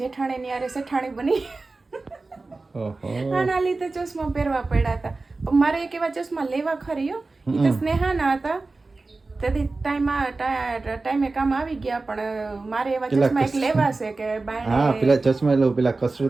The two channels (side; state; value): left; quieter; 3.5 dB